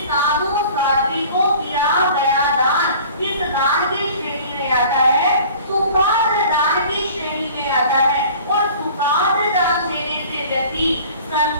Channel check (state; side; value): inverted; both; correlation -0.46